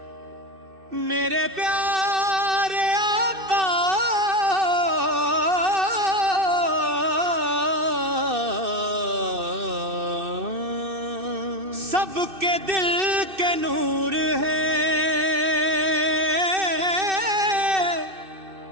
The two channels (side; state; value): left; late; 2.6 ms